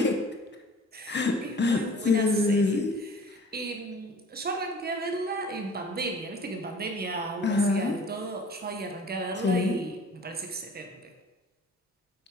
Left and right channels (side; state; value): both; normal; correlation 0.48